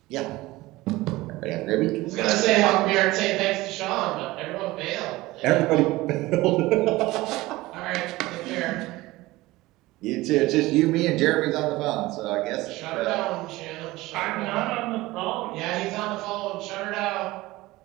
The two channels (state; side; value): quieter; left; 19.2 dB